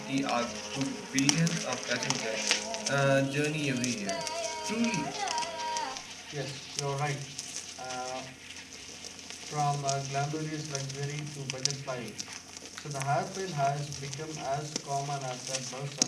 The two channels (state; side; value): identical; both; correlation 1.00